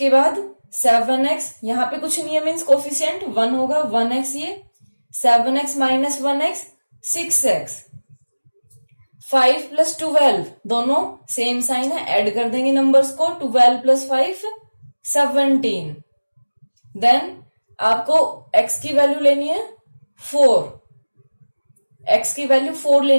बाद 7x, यहां पे कुछ नहीं है, मीन्स कोफिशिएंट 1 होगा. 1x ये 7x minus 1x 6x. 5 plus 12 दोनों सेम साइन है, ऐड कर देंगे नंबर्स को. 12 प्लस 5 17. देन आपको x की वैल्यू लेनी है 4, x की वैल्यू 4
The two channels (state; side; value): inverted; both; correlation -1.00